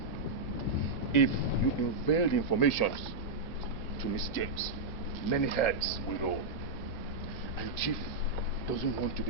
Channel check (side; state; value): left; quieter; 3.1 dB